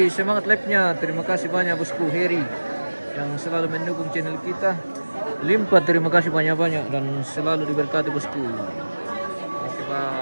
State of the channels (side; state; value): both; inverted; correlation -1.00